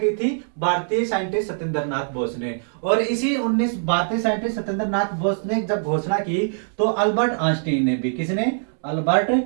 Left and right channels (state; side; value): silent; left; digital silence